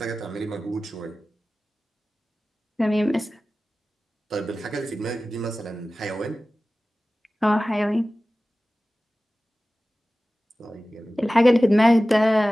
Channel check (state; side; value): normal; both; correlation 0.96